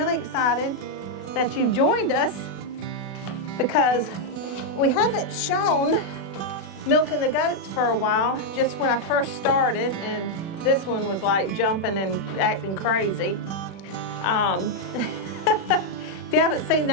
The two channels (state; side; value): late; right; 36 ms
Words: excited that you've joined us because we haven't shown milking the goats for a while, just when I first started, and this one was like jumping and acting crazy. If you haven't seen